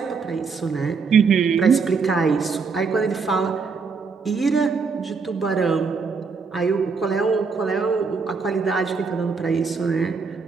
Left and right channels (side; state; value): left; quieter; 5.0 dB